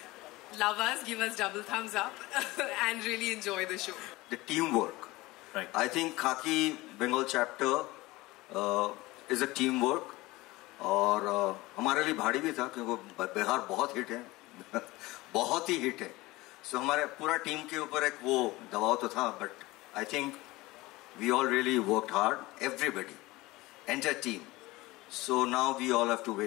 love us, give us double thumbs up and really enjoy the show. The teamwork. Right. I think Khaki Bengal chapter is a teamwork. और हमारे लिए भारी भी था क्योंकि बिहार बहुत hit है बहुत ही हिट है. सो हमारे पूरा टीम के ऊपर एक वो दबाव तो था, but I think we all really worked hard, everybody, entire team. So now we all have to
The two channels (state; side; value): quieter; right; 20.3 dB